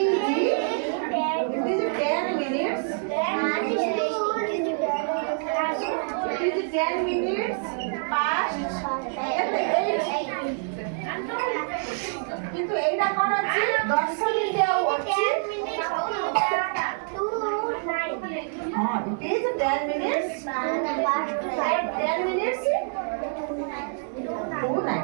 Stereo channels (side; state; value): left; silent; 61 dB below the other